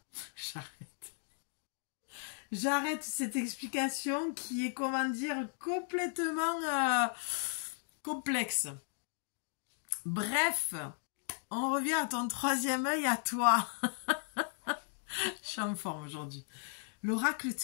J'arrête cette explication qui est, comment dire, complètement complexe. Bref, on revient à ton troisième œil, à toi. Je suis en forme aujourd'hui. L'oracle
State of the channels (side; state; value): right; silent; 54 dB below the other